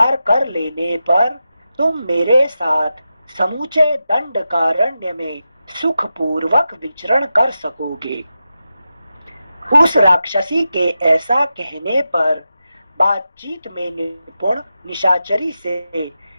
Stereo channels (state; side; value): inverted; both; correlation -0.90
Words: कर लेने पर तुम मेरे साथ समूचे दंडकारण्य में सुखपूर्वक विचरण कर सकोगे। उस राक्षसी के ऐसा कहने पर बातचीत में निपुण निशाचरी से